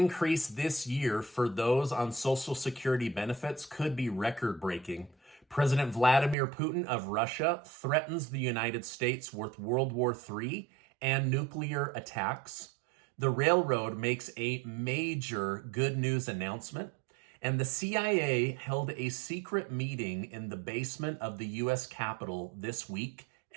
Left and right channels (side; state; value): left; drops out; at 6.4 s